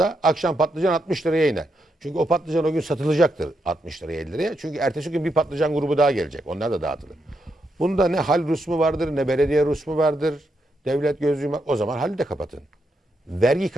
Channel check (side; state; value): both; normal; correlation 0.81